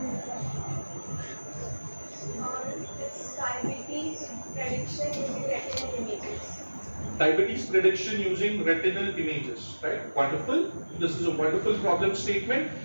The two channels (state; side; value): inverted; both; correlation -1.00